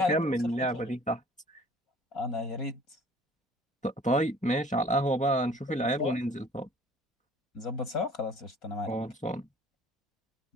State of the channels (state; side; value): normal; both; correlation 0.51